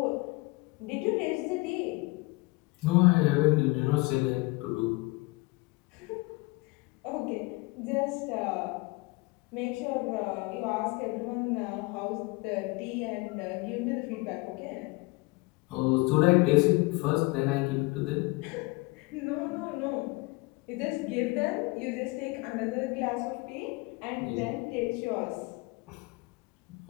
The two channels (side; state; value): right; quieter; 24.9 dB